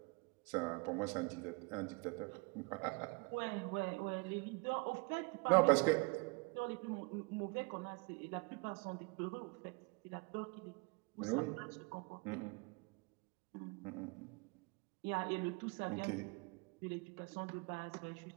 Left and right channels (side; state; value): left; quieter; 29.4 dB